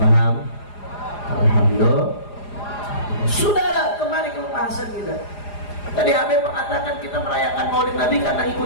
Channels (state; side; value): late; right; 4.9 ms